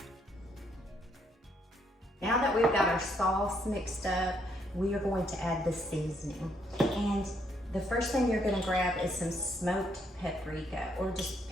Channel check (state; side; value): normal; both; correlation 0.72